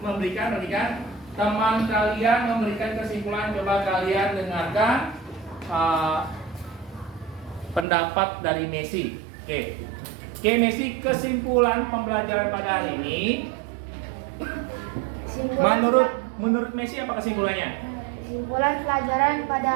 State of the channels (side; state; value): left; drops out; at 7.9 s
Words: memberikan. Teman kalian memberikan kesimpulan. Coba kalian dengarkan pendapat dari Messi. Oke, Messi, kesimpulan pembelajaran pada hari ini. Menurut Messi apa kesimpulannya? Kesimpulan pelajaran